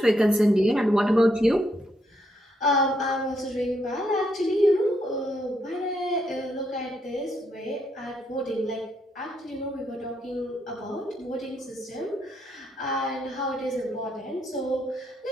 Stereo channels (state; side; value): normal; both; correlation 0.76